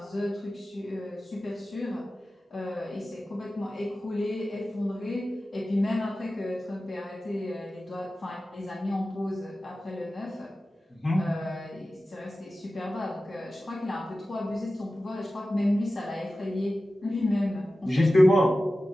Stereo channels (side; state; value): both; normal; correlation 0.95